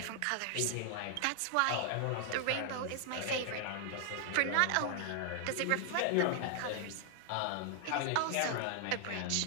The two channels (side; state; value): both; different; correlation 0.00